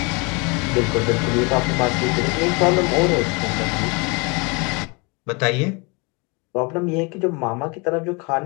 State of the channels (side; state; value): right; quieter; 29.9 dB